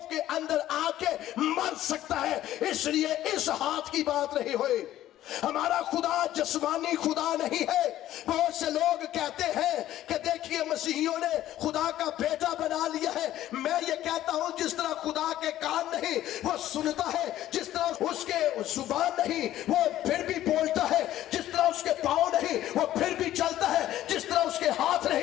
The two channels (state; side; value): quieter; right; 13.4 dB